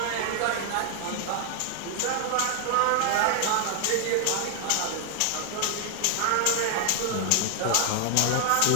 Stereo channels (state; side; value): different; both; correlation 0.00